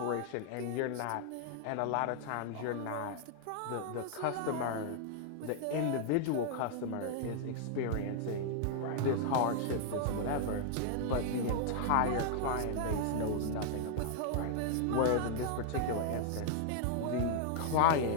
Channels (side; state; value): both; different; correlation 0.00